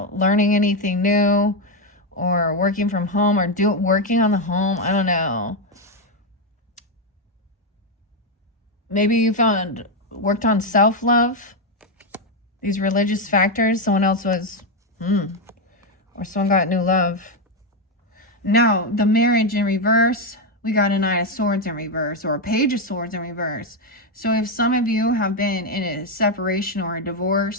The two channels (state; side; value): normal; both; correlation 0.05